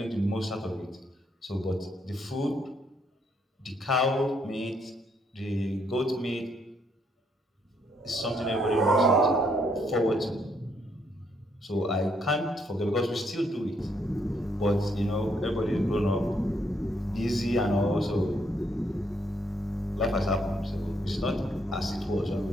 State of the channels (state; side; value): normal; both; correlation 0.72